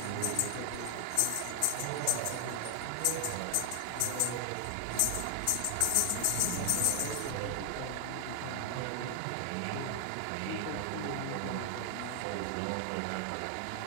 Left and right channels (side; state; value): both; different; correlation 0.00